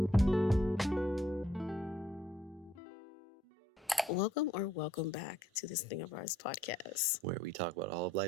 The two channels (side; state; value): both; normal; correlation 0.66